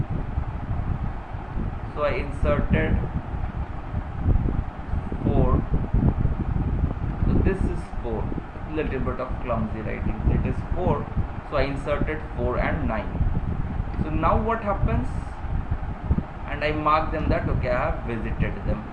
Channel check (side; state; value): both; identical; correlation 1.00